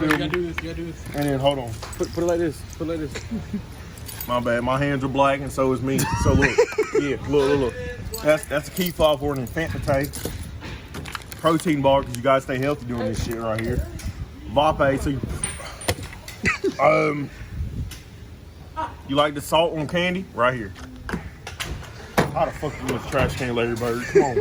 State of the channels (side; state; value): both; identical; correlation 1.00